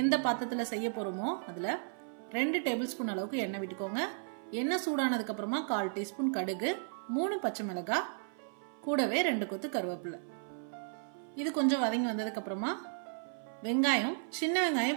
பாத்திரத்துல செய்ய போறோமோ அதுல 2 டேபிள்ஸ்பூன் அளவுக்கு எண்ணெய் விட்டுக்கோங்க. எண்ணெய் சூடானதுக்கு அப்புறமா 1/4 டீஸ்பூன் கடுகு, 3 பச்சை மிளகாய், கூடவே 2 கொத்து கருவேப்பிலை. இது கொஞ்சம் வதங்கி வந்ததுக்கு அப்புறமா வெங்காயம், சின்ன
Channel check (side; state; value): left; silent; 55 dB below the other